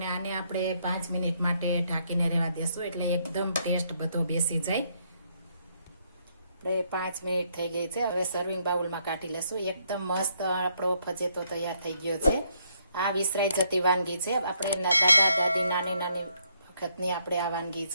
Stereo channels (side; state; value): both; inverted; correlation -0.73